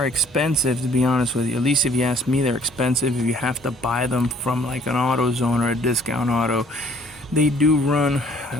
expensive, to be honest with you. At least if you ask me, they're expensive if you have to buy them from like an AutoZone or a discount auto. They do run,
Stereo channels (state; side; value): normal; both; correlation 0.58